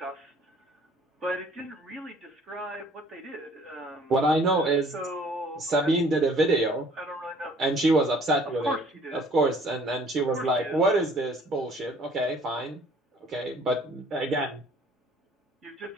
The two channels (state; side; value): normal; both; correlation 0.55